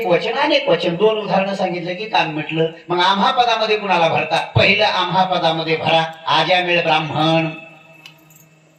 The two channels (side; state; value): both; identical; correlation 1.00